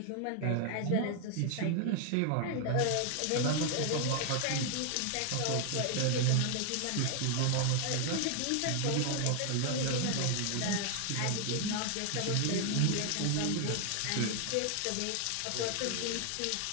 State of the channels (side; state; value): both; different; correlation 0.00